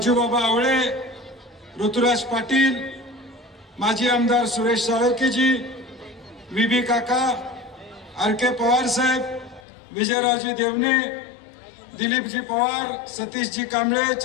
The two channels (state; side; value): drops out; right; at 9.6 s